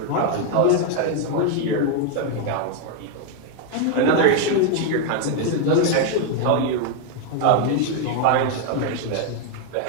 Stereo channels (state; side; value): different; both; correlation 0.00